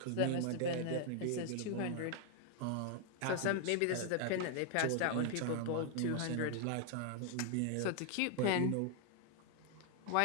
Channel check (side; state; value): both; different; correlation 0.00